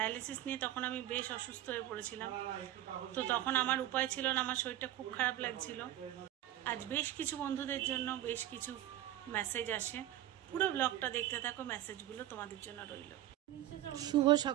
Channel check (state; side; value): quieter; left; 13.5 dB